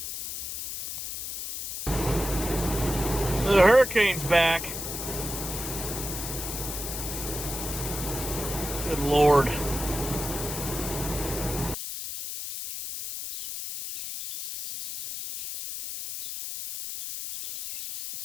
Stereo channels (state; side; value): noise; left; hiss, 5 dB below the sound